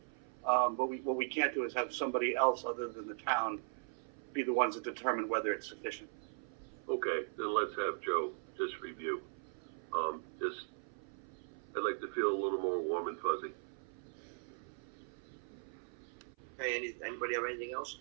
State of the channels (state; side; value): silent; left; 52 dB below the other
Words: but what we can't do is have somebody else other than the town be the ones that determine whether it's sufficient. Okay, then let's have Joe just review. I'd like to feel a little more warm and fuzzy. Hey, anybody have anything else?